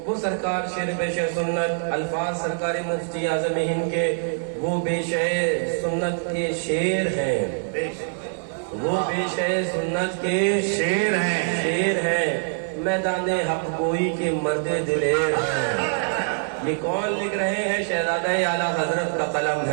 وہ سرکار شیر پیش سنت الفاظ سرکار مفتی اعظم ہند کے وہ پیش سنت کے شیر ہیں، وہ پیش سنت کے شیر ہیں، میدان حق گوئی کے مرد دلیر ہیں۔ یہ کون لکھ رہے ہیں؟ شہزادہ اعلیٰ حضرت کا قلم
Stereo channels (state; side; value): silent; left; 62 dB below the other